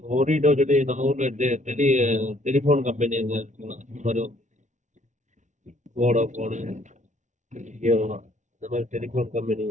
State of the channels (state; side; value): late; left; 0.35 ms